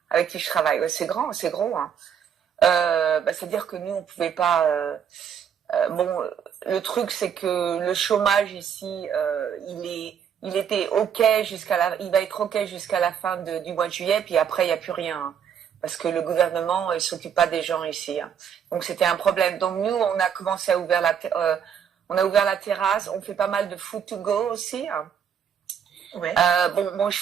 avec qui je travaille. Ouais, c'est gros. C'est-à-dire que nous on pouvait pas. Le truc c'est que le chômage ici, il était il va être ok jusqu'à la fin du mois de juillet, puis après il y a plus rien, parce que le gouvernement il s'occupe pas des gens ici. Donc c'était un problème. Donc nous on a commencé à ouvrir la terrasse. On fait pas mal de food to go aussi. Ouais. Je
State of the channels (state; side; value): quieter; left; 8.1 dB